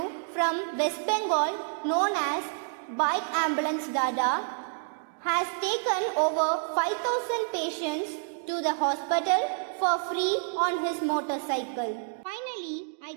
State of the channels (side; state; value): left; silent; digital silence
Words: from West Bengal, known as Bike Ambulance Dada, has taken over 5,000 patients to the hospital for free on his motorcycle. Finally, I